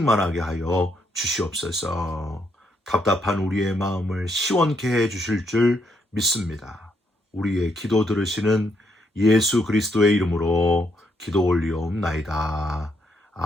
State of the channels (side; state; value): both; normal; correlation 0.75